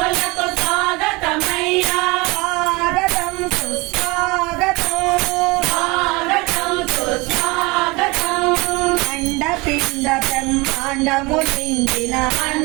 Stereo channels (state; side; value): quieter; left; 24.8 dB